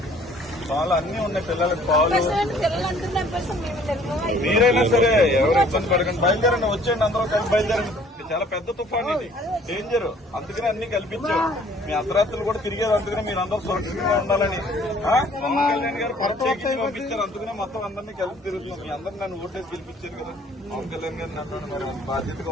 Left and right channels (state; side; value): normal; both; correlation 0.57